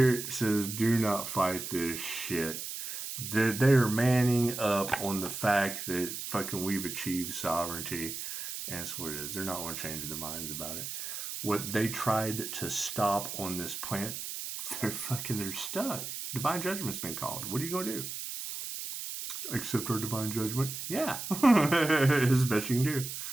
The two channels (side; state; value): right; noise; hiss, 6 dB below the sound